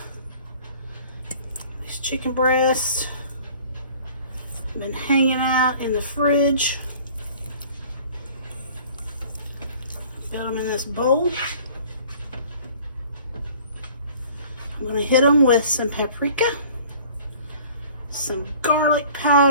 these chicken breasts have been hanging out in the fridge. Got them in this bowl. I'm gonna hit them with some paprika, some garlic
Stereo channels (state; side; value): inverted; both; correlation -0.49